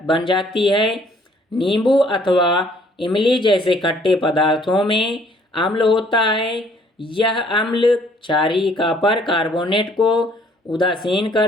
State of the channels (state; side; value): normal; both; correlation 0.61